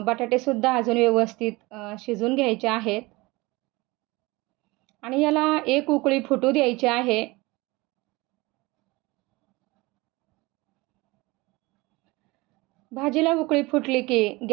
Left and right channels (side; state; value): left; quieter; 22.8 dB